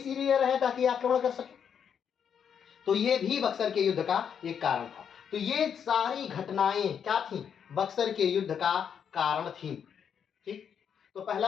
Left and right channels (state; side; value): quieter; right; 7.8 dB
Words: रहे ताकि आक्रमण कर सके। तो ये भी बक्सर के युद्ध का एक कारण था। तो ये सारी घटनाएं क्या थी, बक्सर के युद्ध का कारण थी। ठीक, तो